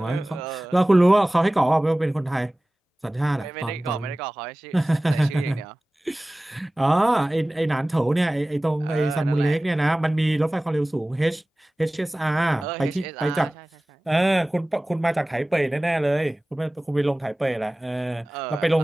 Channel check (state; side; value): normal; both; correlation 0.98